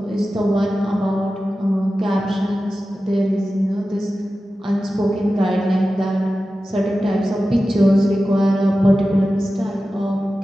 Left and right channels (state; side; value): normal; both; correlation 0.94